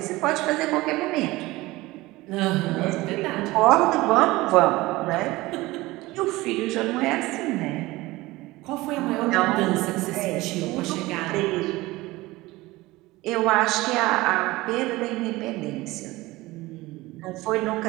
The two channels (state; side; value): quieter; left; 19.8 dB